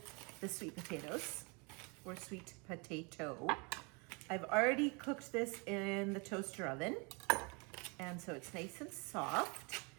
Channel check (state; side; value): quieter; left; 31.3 dB